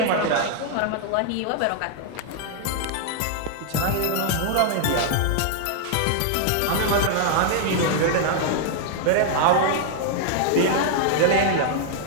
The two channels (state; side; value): different; both; correlation 0.00